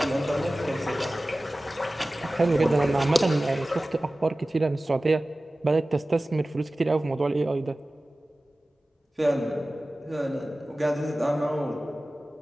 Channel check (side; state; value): both; normal; correlation 0.97